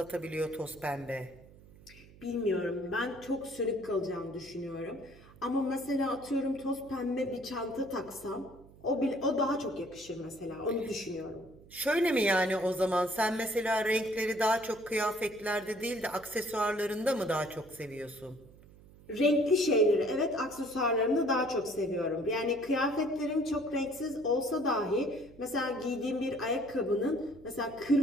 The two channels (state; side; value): noise; right; hum, 23 dB below the sound